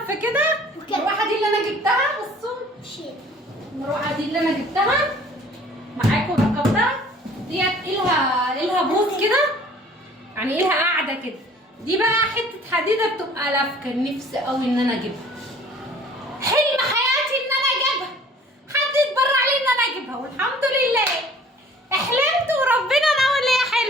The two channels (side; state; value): both; normal; correlation 0.51